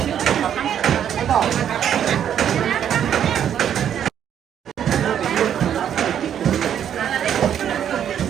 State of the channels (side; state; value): left; quieter; 9.4 dB